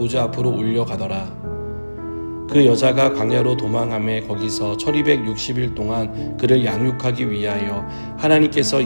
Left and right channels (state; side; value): inverted; both; correlation -1.00